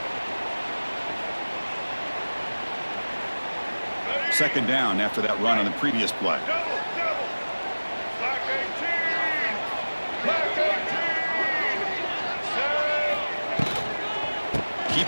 Second down after that run on the previous play. Double, double. Black 18. Black 18. Set.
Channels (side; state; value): both; inverted; correlation -1.00